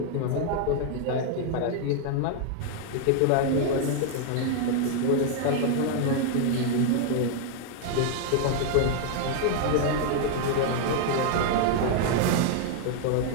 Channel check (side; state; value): both; different; correlation 0.00